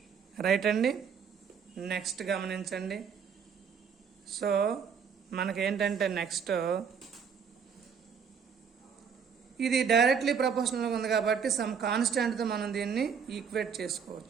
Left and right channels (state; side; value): quieter; left; 6.8 dB